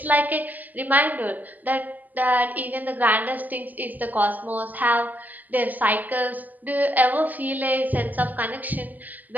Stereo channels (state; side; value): late; left; 0.082 ms